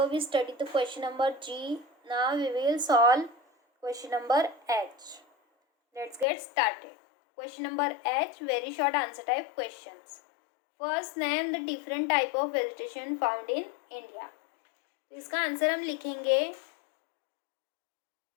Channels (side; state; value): right; drops out; at 6.2 s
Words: we studied the question number G. Now we will solve question number H. Let's get started. Question number H, very short answer type questions. First, name the different type of vegetation found in India. इसका answer हम लिखेंगे